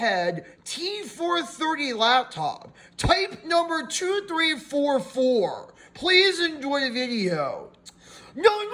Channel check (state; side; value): identical; both; correlation 1.00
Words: T430 laptop, type number 2344. Please enjoy the video. Now I'm